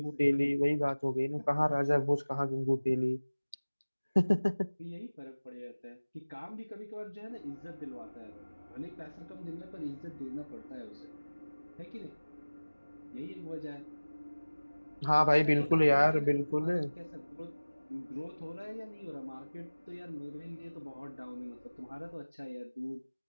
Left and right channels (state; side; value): inverted; both; correlation -1.00